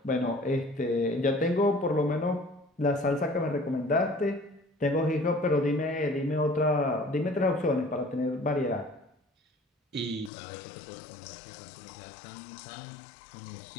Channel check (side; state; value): right; drops out; at 10.3 s